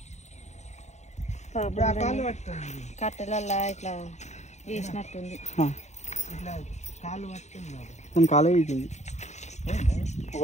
కట్టెలల్లా ఇట్లా వేసినట్టుంది కాలు పట్టుకుంది కాలే వేసింది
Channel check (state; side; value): late; right; 0.33 ms